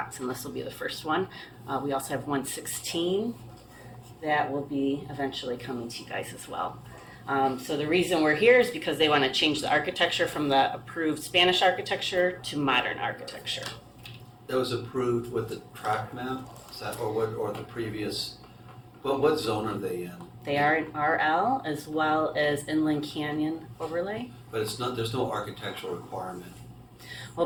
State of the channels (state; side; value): identical; both; correlation 1.00